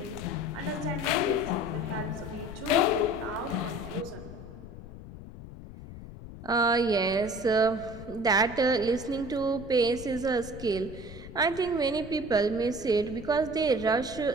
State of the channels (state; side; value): noise; left; rumble, 14 dB below the sound